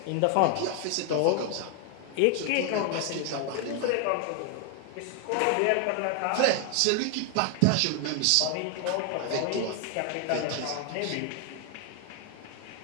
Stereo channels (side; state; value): both; different; correlation 0.01